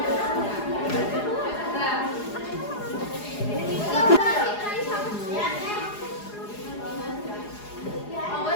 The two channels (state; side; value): late; right; 4.8 ms